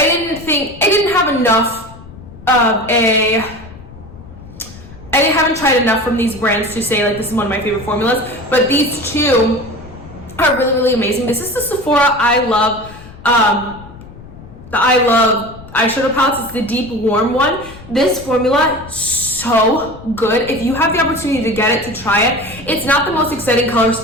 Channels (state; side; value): noise; left; rumble, 18 dB below the sound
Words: haven't tried enough from these brands to say like this is one of my favorite formulas, but these two are really, really amazing. This is the Sephora I Love eyeshadow palettes. It's the deep warm one. This formula, so good. If you have the opportunity to get it, to try it. It's not the most exciting color